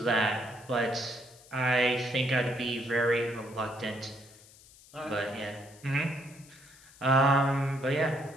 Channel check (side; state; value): left; noise; hiss, 23 dB below the sound